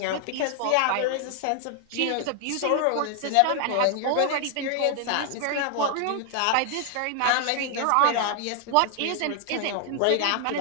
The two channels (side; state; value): both; different; correlation 0.00